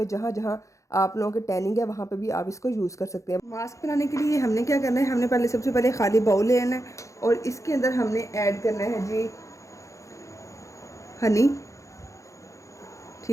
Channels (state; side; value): late; right; 0.15 ms